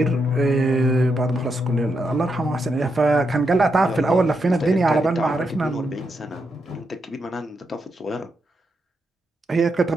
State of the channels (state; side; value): normal; both; correlation 0.82